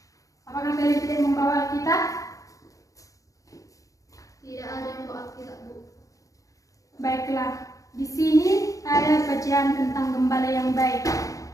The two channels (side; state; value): right; late; 0.16 ms